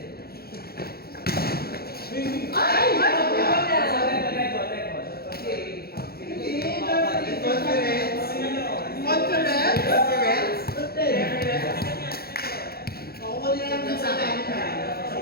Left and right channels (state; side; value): late; right; 0.45 ms